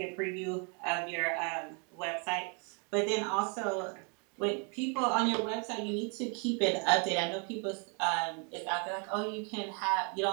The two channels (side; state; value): left; quieter; 36.5 dB